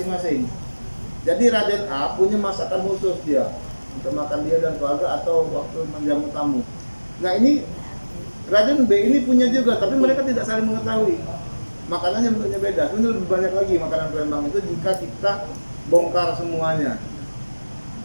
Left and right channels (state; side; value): inverted; both; correlation -1.00